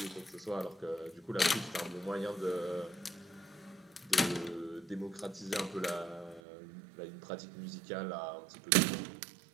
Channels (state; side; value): drops out; left; at 6.4 s